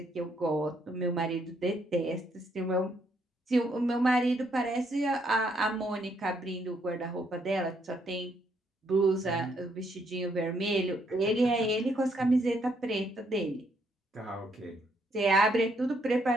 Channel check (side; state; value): both; normal; correlation 0.72